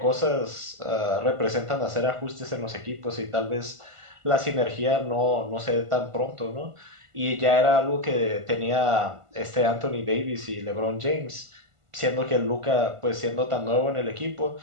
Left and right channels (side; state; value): left; late; 1.5 ms